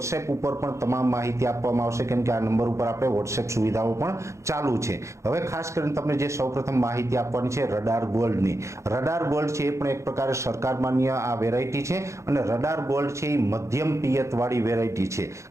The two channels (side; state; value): left; late; 0.14 ms